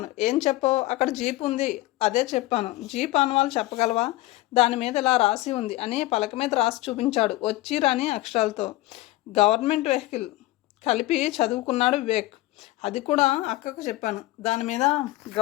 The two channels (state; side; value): quieter; right; 18.1 dB